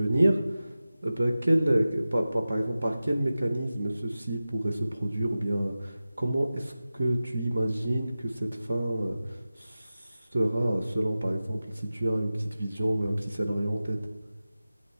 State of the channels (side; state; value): both; inverted; correlation -0.95